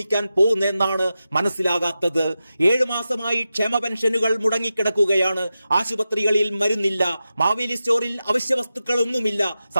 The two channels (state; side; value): inverted; both; correlation -0.92